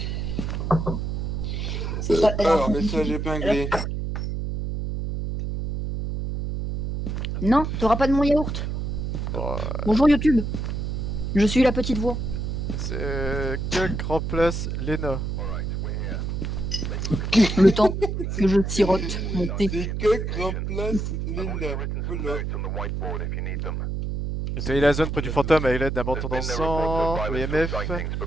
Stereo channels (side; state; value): right; noise; hum, 3 dB below the sound